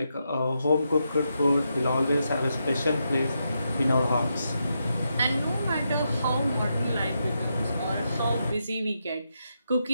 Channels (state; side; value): inverted; both; correlation -0.84